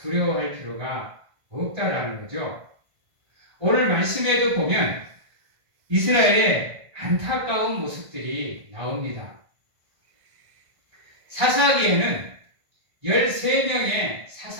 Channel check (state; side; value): late; left; 1.5 ms